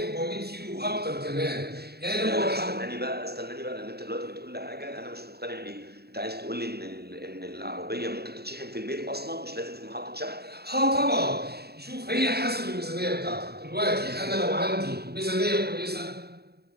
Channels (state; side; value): late; left; 0.47 ms